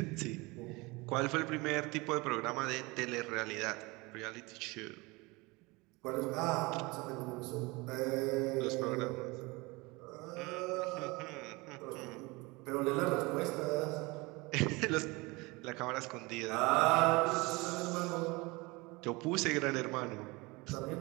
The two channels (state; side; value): quieter; left; 24.5 dB